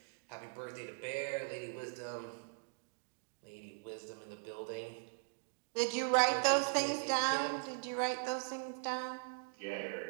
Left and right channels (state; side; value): silent; left; digital silence